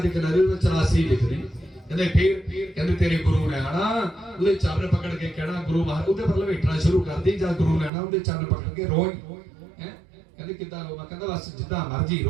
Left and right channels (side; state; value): left; drops out; at 7.9 s